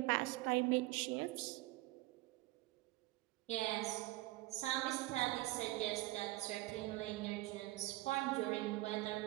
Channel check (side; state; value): left; quieter; 19.3 dB